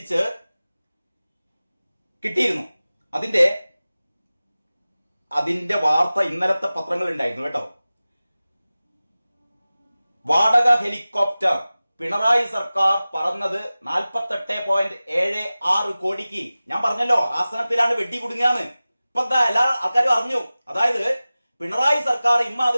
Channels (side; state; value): both; inverted; correlation -0.97